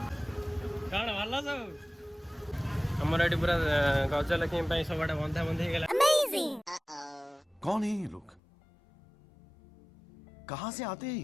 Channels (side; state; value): right; drops out; at 8.4 s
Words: कौन भल सब हमारे ये पूरा गजलक्ष्मी सब बंधा बंधी गला। कौन है ये लोग कहाँ से आते